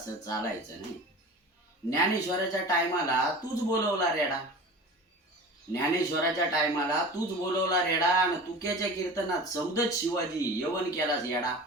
चालायचं नाही. ज्ञानेश्वराच्या टायमाला तूच बोलवला रेडा. ज्ञानेश्वराच्या टायमाला तूच बोलवला रेडा, आणि तुक्याच्या कीर्तनात सौदत शिवाजी यवन केलास येडा.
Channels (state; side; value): normal; both; correlation 0.36